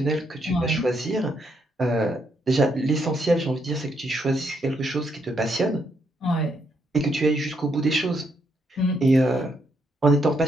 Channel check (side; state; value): both; normal; correlation 0.76